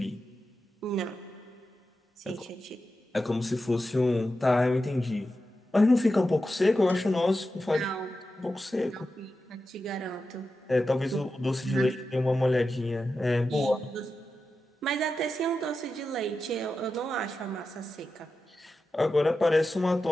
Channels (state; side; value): normal; both; correlation 0.91